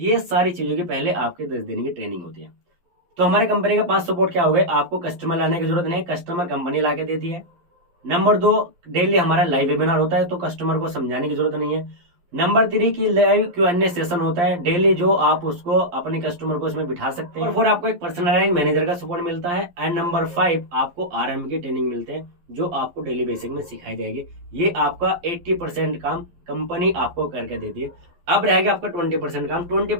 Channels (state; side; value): late; left; 11 ms